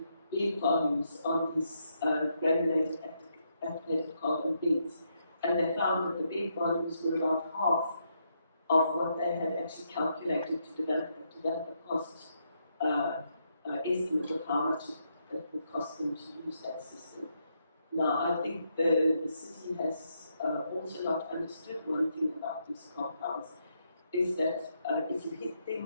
bed volumes on these granulated activated carbon beds, and they found that the bed volumes were about half of what they had actually calculated to develop a cost estimate of how much it would cost them to use that system. Now, I think the city has also not understood one thing about these compounds, is that if you hit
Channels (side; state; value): both; inverted; correlation -0.78